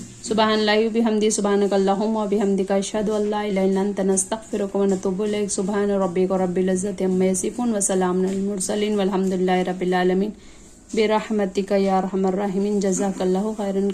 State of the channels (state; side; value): identical; both; correlation 1.00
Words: سبحان اللہ و بحمدہ، سبحانک اللہم و بحمدک، اشہد ان لا الہ الا انت، نستغفرک و نتوب الیک۔ سبحان ربک رب العزۃ عما یصفون وسلام علی المرسلین والحمد للہ رب العالمین، برحمتک یا ارحم الراحمین۔ جزاک اللہ خیرا